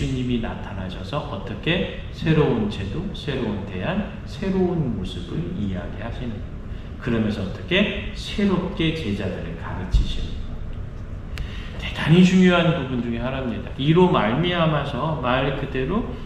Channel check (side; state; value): both; identical; correlation 1.00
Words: 나타나셔서 어떻게 새로운 제도, 새로운 대안, 새로운 모습을 이야기하시는 거예요. 그러면서 어떻게 새롭게 제자들을 가르치시는 거예요. 대단히 중요한 부분 중에 하나입니다. 이로 말미암아서 말 그대로